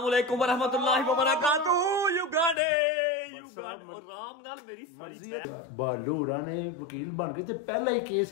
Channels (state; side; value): drops out; right; at 2.6 s